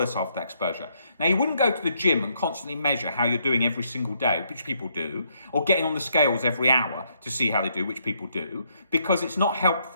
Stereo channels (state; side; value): inverted; both; correlation -0.73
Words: after that exposure? Now, you wouldn't go to the gym and constantly measure how you're doing every single day, which people do, or getting on the scales every hour to see how they do, which people do, because it's not